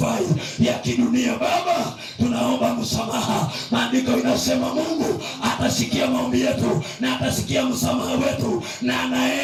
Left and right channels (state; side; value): identical; both; correlation 1.00